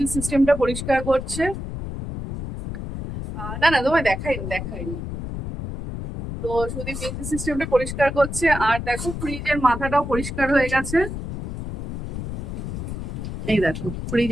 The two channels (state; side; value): noise; left; rumble, 6 dB below the sound